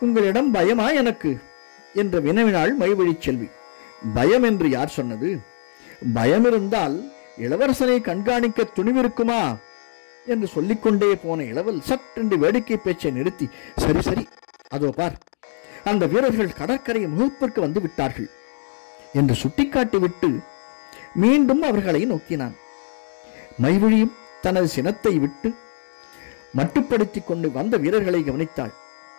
உங்களிடம் பயமா எனக்கு என்று வினவினாள் மைவழி செல்வி. பயம் என்று யார் சொன்னது? பயம் இருந்தால் இளவரசனை கண்காணிக்க துணிவிருக்குமா என்று சொல்லிக்கொண்டே போன இளவல் சற்றென்று வேடிக்கை பேச்சை நிறுத்தி, சரி சரி, அதோ பார், அந்த வீரர்கள் கடற்கரை முகப்பிற்கு வந்து விட்டார்கள் என்று சுட்டிக்காட்டிவிட்டு மீண்டும் அவர்களை நோக்கினான். மைவழியும் தனது சினத்தை விட்டு மட்டுப்படுத்திக் கொண்டு வந்த வீரர்களை கவனித்தாள்.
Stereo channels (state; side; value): silent; right; digital silence